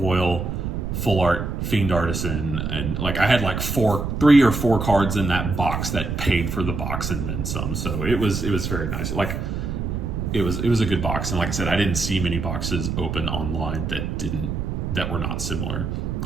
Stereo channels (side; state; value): right; noise; rumble, 3 dB below the sound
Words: full art Fiend Artisan, and like I had like 3 or 4 cards in that box that paid for the box and then some. So it was very nice. Like it was a good box, and like I said, I didn't see many boxes open online that were not similar.